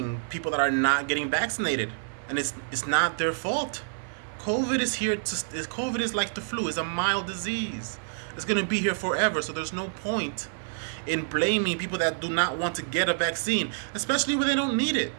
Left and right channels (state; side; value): silent; left; 59 dB below the other